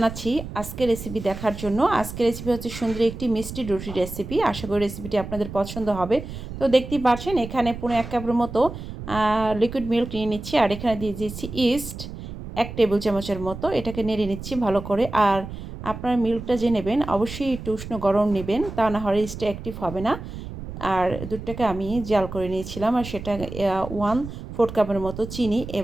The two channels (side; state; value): right; noise; rumble, 10 dB below the sound